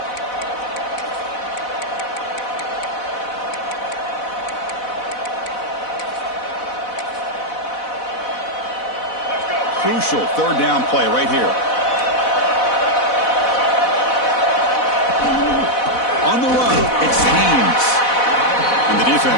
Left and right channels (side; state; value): right; late; 4.1 ms